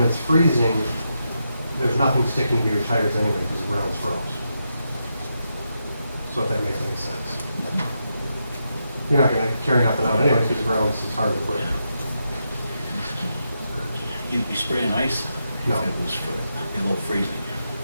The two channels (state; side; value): inverted; both; correlation -0.84